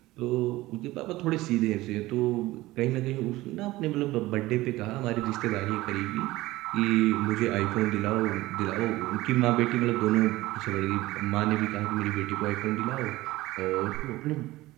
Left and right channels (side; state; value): left; quieter; 18.2 dB